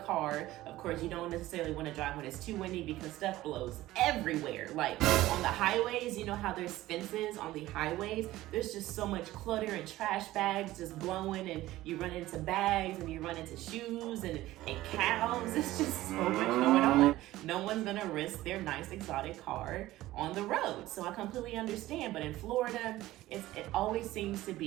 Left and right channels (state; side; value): quieter; left; 16.3 dB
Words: car, of course you don't necessarily want to drive when it's too windy because stuff blows everywhere. Like on the highways, you know how there's fences on the highways, there's just so much clutter and trash bags just blowing, and you run into bags and you run into shoes and cows. It's just so much going on. No one's gonna risk their nice exotic car on the road, so I completely understand. But in Florida, it always seems to